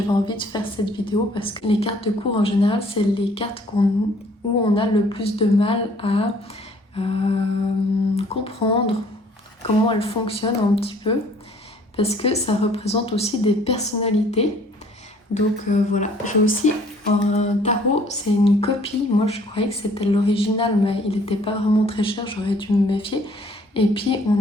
envie de faire cette vidéo parce que les cartes de cours en général c'est les cartes où on a le plus de mal à comprendre comment elles fonctionnent un petit peu parce que ça représente aussi des personnalités. Donc voilà, j'ai aussi un tarot, c'est une copie. Moi je croyais que c'était l'original mais il n'était pas vraiment très cher, j'aurais dû me méfier. Et puis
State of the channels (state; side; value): normal; both; correlation 0.58